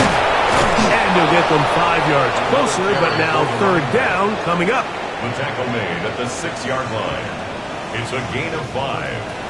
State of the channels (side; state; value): both; identical; correlation 1.00